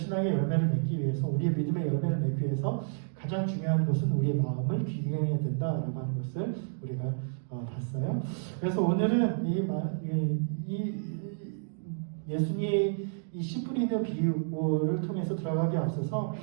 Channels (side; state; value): left; silent; digital silence